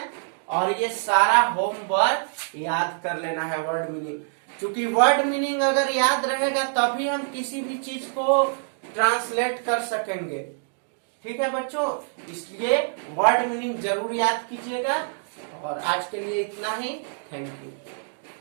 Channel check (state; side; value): silent; left; digital silence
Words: और ये सारा होमवर्क याद कर लेना है, वर्ड मीनिंग। क्योंकि वर्ड मीनिंग अगर याद रहेगा तभी हम किसी भी चीज को ट्रांसलेट कर सकेंगे, ठीक है बच्चों? इसलिए वर्ड मीनिंग जरूर याद कीजिएगा। और आज के लिए इतना ही। Thank you.